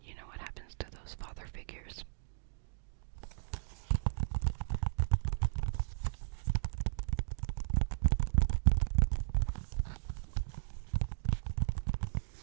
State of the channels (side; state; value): left; silent; digital silence